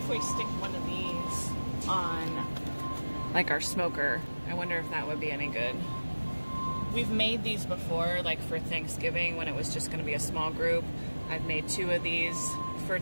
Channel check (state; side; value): inverted; both; correlation -1.00